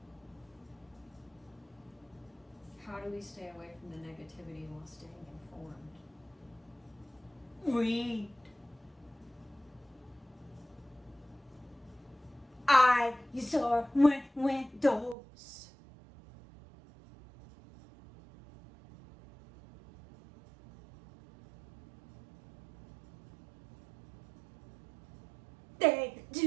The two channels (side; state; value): left; drops out; at 15.2 s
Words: How do we stay away from the negativity while staying informed? Read. Eyes are windows. They